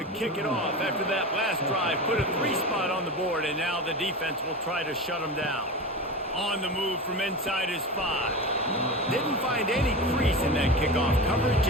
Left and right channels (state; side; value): normal; both; correlation 0.26